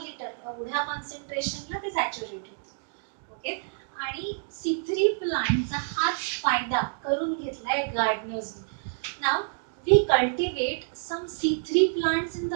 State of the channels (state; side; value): silent; left; digital silence